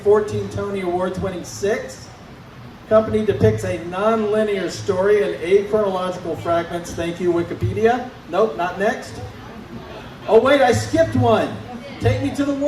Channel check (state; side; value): identical; both; correlation 1.00